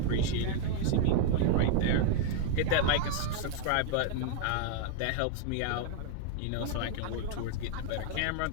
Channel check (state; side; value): different; both; correlation 0.00